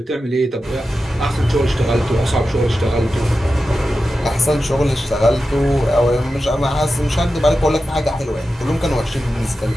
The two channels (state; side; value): normal; both; correlation 0.92